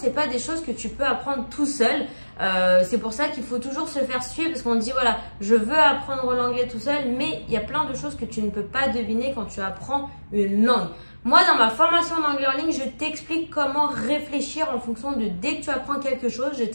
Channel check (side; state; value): both; inverted; correlation -1.00